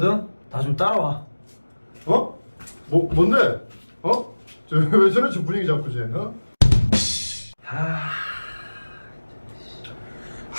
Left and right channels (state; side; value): inverted; both; correlation -1.00